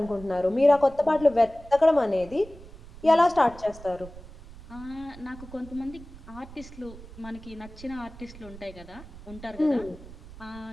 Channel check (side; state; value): right; noise; rumble, 17 dB below the sound